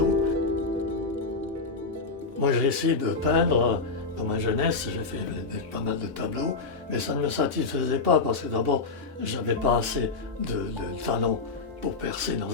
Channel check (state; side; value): quieter; right; 4.2 dB